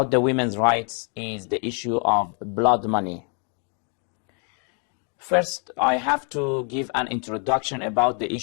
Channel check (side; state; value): right; quieter; 38.8 dB